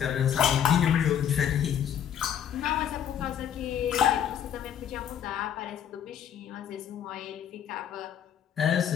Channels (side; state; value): right; quieter; 9.3 dB